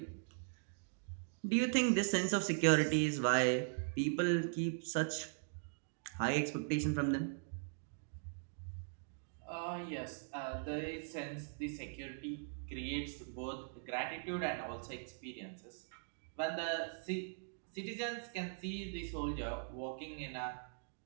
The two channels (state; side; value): silent; left; digital silence